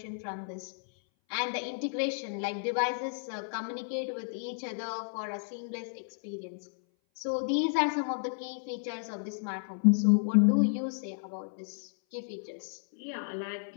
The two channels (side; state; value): right; silent; 56 dB below the other